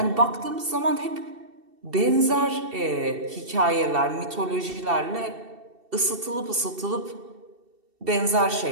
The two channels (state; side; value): late; left; 2.7 ms